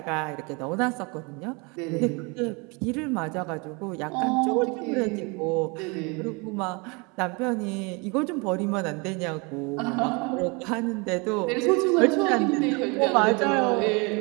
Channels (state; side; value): quieter; left; 29.7 dB